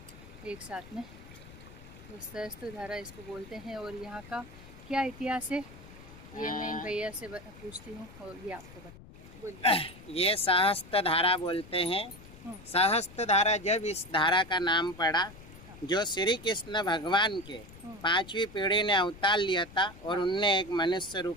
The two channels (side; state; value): left; noise; rumble, 18 dB below the sound